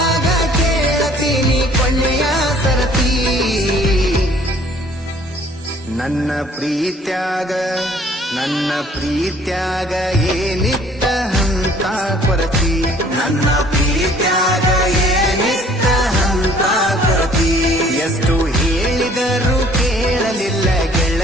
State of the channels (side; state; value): both; normal; correlation 0.56